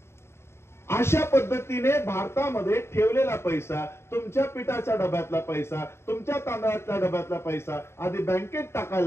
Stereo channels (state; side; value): late; right; 0.12 ms